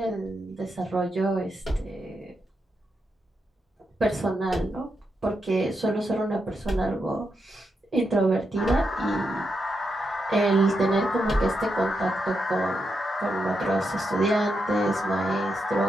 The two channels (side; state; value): both; normal; correlation 0.84